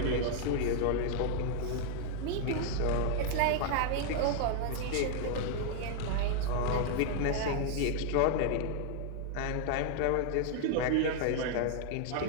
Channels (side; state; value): both; different; correlation 0.00